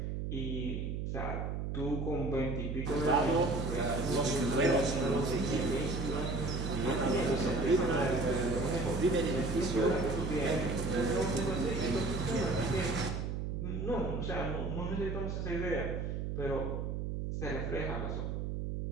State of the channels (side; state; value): right; noise; hum, 3 dB below the sound